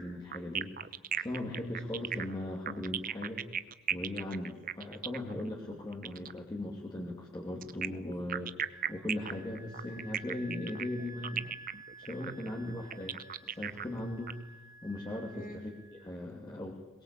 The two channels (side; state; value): both; normal; correlation 0.65